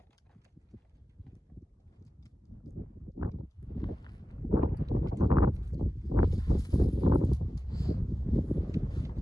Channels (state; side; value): normal; both; correlation 0.94